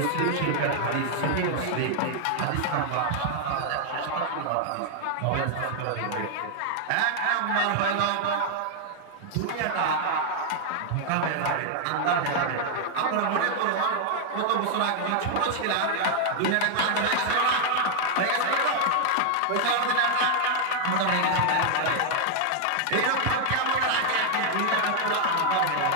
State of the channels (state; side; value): different; both; correlation 0.00